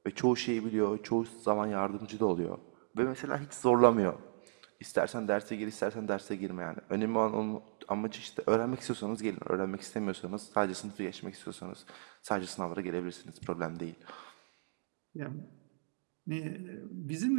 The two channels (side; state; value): left; silent; digital silence